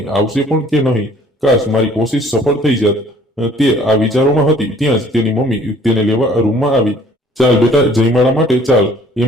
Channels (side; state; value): both; normal; correlation 0.56